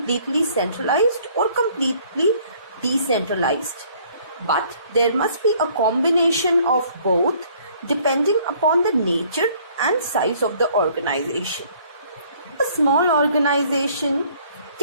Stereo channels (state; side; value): inverted; both; correlation -0.59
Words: centralized or completely decentralized, but there must be a combination of both depending upon the nature and size of the organization. A small organization